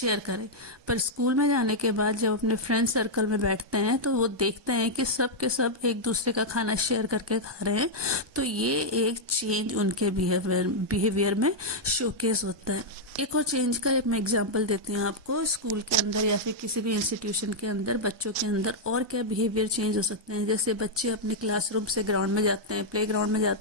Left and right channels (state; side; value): late; left; 1.2 ms